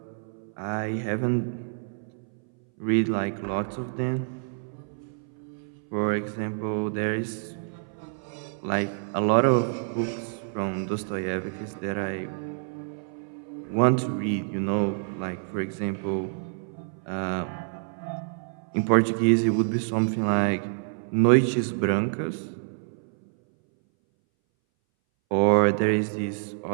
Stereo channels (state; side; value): silent; left; 60 dB below the other